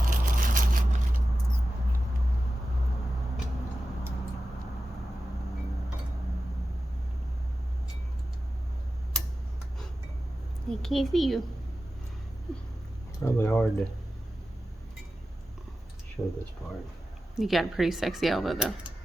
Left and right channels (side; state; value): both; normal; correlation 0.93